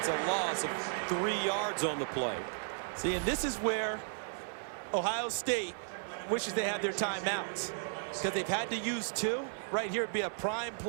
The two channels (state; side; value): silent; left; 55 dB below the other